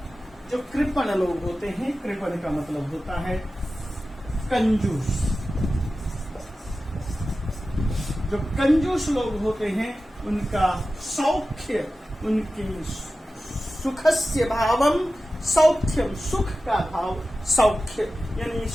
जो कृपण लोग होते हैं, कृपण का मतलब होता है कंजूस। जो कंजूस लोग होते हैं उनका सौख्य, उनकी सुखस्य भावम सौख्यम, सुख का भाव सौख्य, यानी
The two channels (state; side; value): normal; both; correlation 0.94